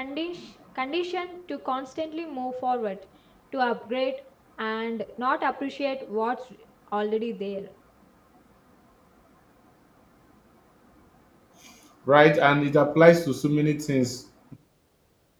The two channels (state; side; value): identical; both; correlation 1.00